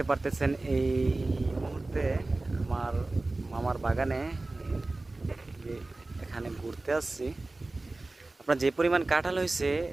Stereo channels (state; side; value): quieter; left; 3.1 dB